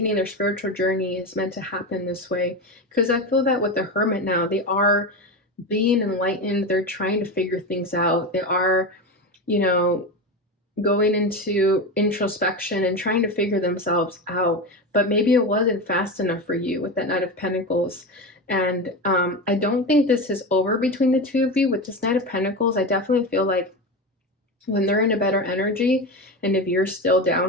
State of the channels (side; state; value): both; normal; correlation 0.21